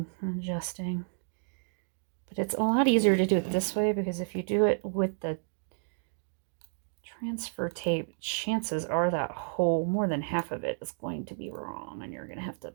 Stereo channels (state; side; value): silent; left; digital silence